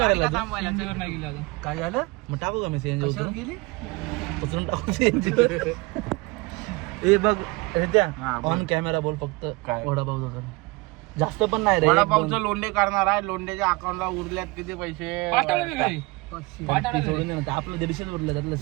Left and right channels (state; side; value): quieter; left; 24.5 dB